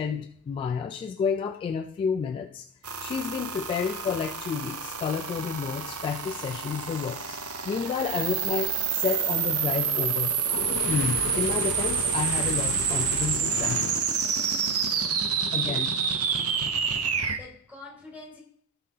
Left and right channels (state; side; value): normal; both; correlation 0.17